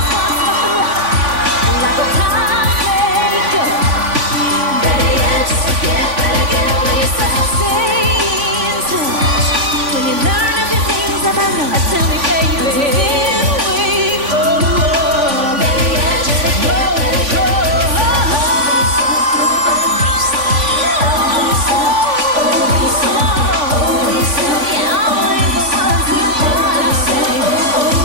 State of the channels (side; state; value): left; late; 3.5 ms